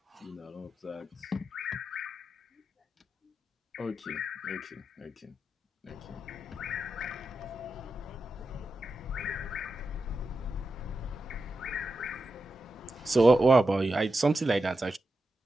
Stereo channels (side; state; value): both; normal; correlation 0.89